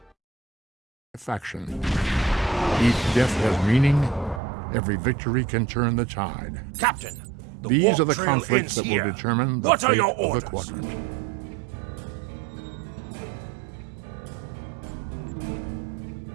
Faction. Each death has meaning. Every victory can turn the tide. Captain, these are the conflicts that will determine the fate of the quadrant.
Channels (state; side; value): drops out; left; at 4.4 s